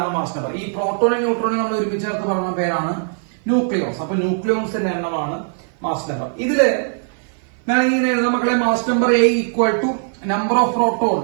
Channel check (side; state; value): left; silent; 58 dB below the other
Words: മാസ് നമ്പർ. ഈ പ്രോട്ടോണും ന്യൂട്രോണും നമ്മൾ ഒരുമിച്ച് ചേർത്ത് പറഞ്ഞ പേരാണ് ന്യൂക്ലിയോൺസ്. അപ്പൊ ന്യൂക്ലിയോൺസിന്റെ എണ്ണമാണ് മാസ് നമ്പർ. ഇതില് ഞാൻ ഇങ്ങനെ എഴുതാം മക്കളെ. Mass number A equal to number of proton.